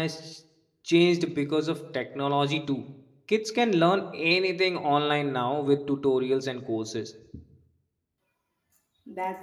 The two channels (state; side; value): identical; both; correlation 1.00